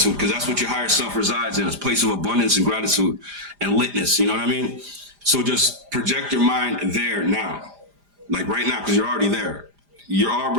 because that's what your higher self resides in, a place of abundance and gratitude and litness. You know what I mean? So just project your mind there now, like right now, because you're already there. you're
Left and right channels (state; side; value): late; left; 5.0 ms